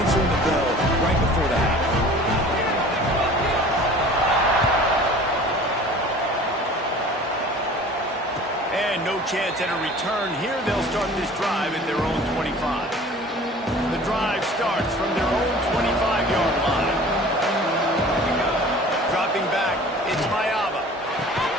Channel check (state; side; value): normal; both; correlation 0.45